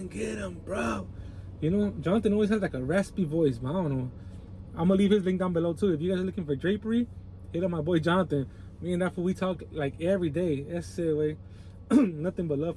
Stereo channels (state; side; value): identical; both; correlation 1.00